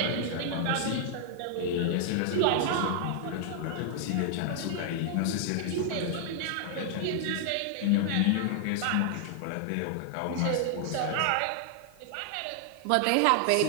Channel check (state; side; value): different; both; correlation 0.00